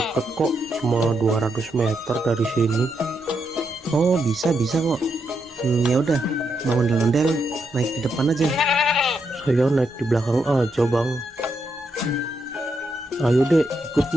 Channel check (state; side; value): normal; both; correlation 0.81